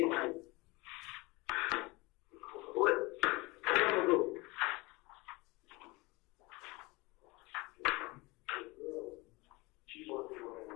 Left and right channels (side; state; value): right; quieter; 24.0 dB